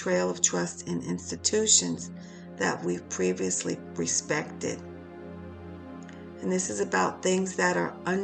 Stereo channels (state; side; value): identical; both; correlation 1.00